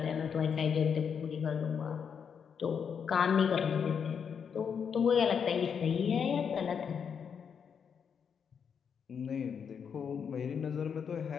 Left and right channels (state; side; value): quieter; right; 7.0 dB